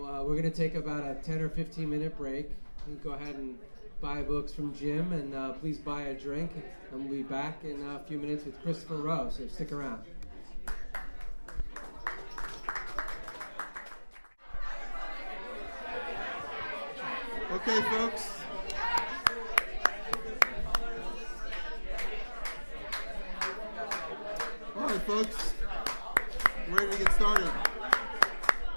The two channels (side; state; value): both; inverted; correlation -1.00